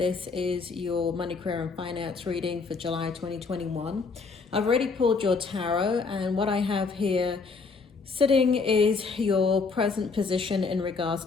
is your money, career and finance reading for July 2021. I've already pulled your tarot, and what I have here sitting is your present position in regards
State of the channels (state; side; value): quieter; right; 4.6 dB